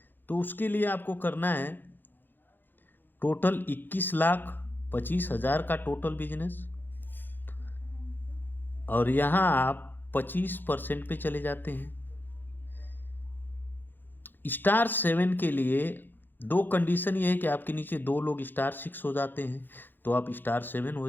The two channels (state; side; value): late; right; 0.093 ms